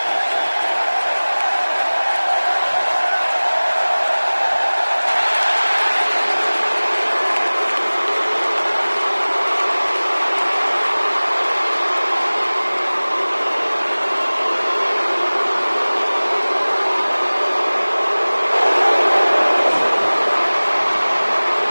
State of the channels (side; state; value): both; inverted; correlation -1.00